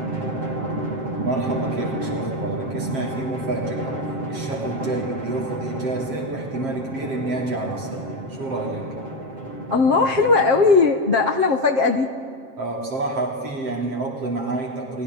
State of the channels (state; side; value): late; left; 7.5 ms